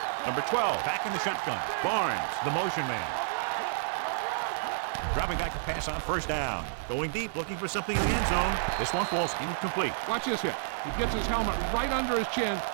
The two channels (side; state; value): left; silent; digital silence